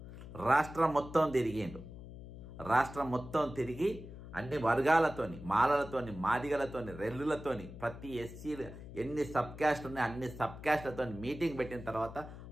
రాష్ట్రం మొత్తం తిరిగిండు. రాష్ట్రం మొత్తం తిరిగి అన్ని వర్గాలతోని, మాలలతోని, మాదిగలతోని, రెల్లులతోని, ప్రతి ఎస్సీ ఎన్ని సబ్ క్యాస్ట్ ఉన్నాయి అన్ని సబ్ క్యాస్ట్లతో మీటింగ్ పెట్టిన తర్వాత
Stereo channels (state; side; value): noise; left; hum, 13 dB below the sound